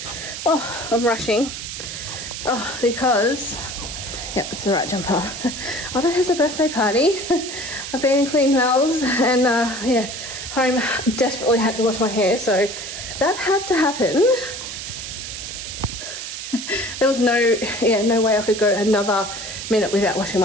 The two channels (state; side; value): noise; right; hiss, 8 dB below the sound